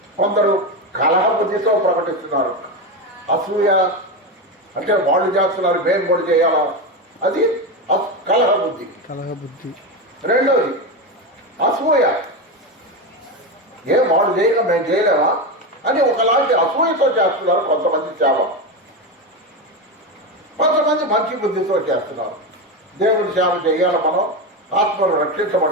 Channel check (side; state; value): both; normal; correlation 0.15